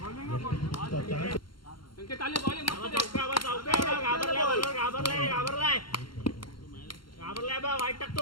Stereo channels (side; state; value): right; late; 0.73 ms